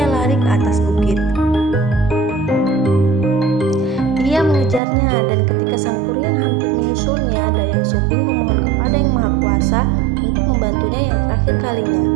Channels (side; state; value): left; drops out; at 4.8 s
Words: lari ke atas bukit. Ia mengejarnya dan ketika Sang Kuryang hampir menyusulnya, Dayang Sumbing memohon kepada Yang Maha Kuasa untuk membantunya yang terakhir kalinya.